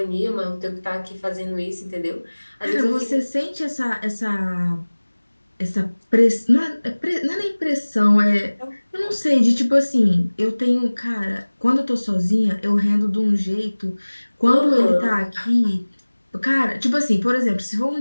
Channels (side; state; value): both; inverted; correlation -1.00